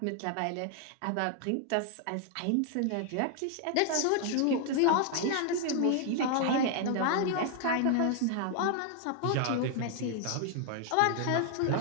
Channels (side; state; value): both; different; correlation 0.00